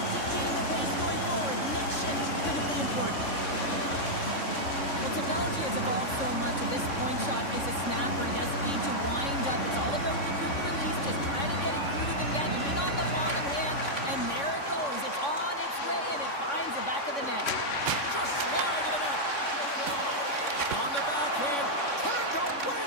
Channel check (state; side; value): late; right; 3.6 ms